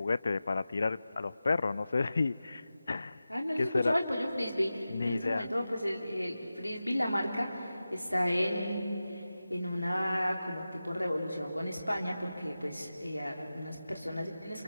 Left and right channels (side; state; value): both; inverted; correlation -0.94